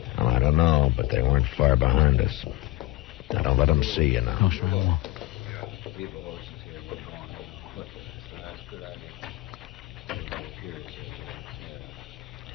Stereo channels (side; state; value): right; quieter; 16.8 dB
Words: Well, I don't know, but they weren't far behind us. Now, don't let them see you now. No, sir, I won't. Keep the horses here. We're going on foot. That's a good idea.